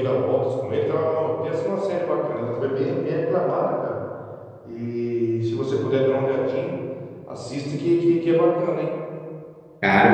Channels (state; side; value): identical; both; correlation 1.00